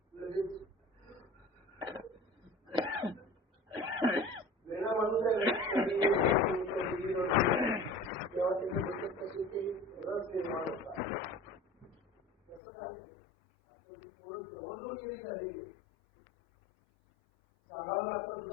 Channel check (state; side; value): drops out; right; at 12.6 s